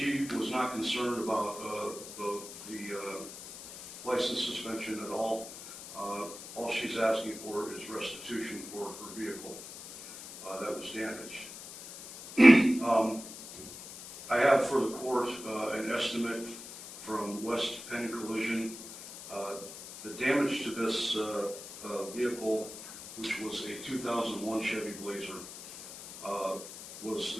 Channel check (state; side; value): noise; left; hiss, 13 dB below the sound